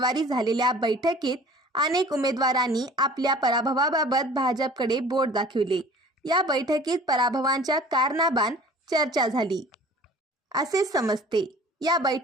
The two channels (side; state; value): both; normal; correlation 0.46